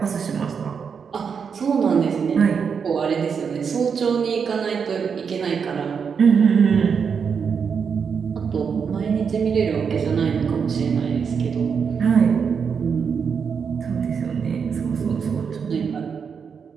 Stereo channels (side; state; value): left; quieter; 6.4 dB